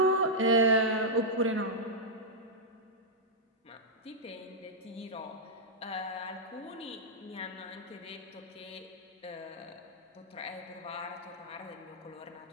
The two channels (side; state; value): both; normal; correlation -0.08